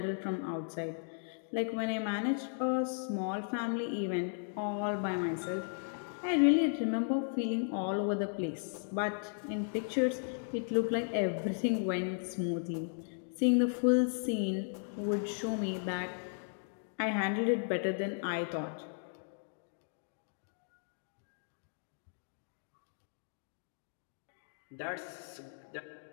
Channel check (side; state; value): right; silent; digital silence